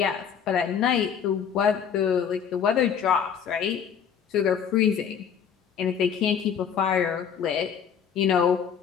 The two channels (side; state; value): right; quieter; 7.7 dB